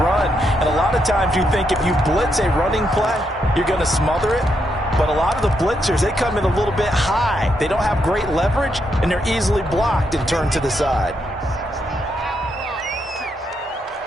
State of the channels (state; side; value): normal; both; correlation 0.79